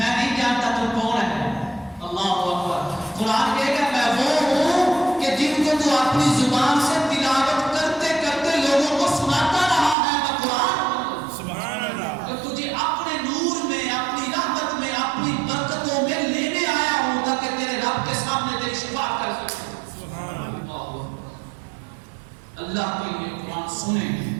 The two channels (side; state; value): left; drops out; at 10.0 s